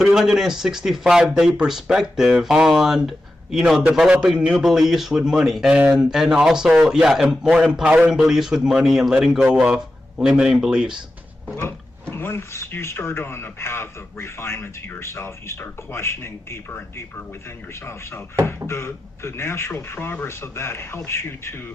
perspective on, developing new beliefs with money, and also, more empowering beliefs with money and letting go of limiting beliefs? Well, once you start on a path of refinement to yourself, you start questioning deeper and deeper within yourself. So the natural progress of that helps you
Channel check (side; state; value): both; normal; correlation 0.92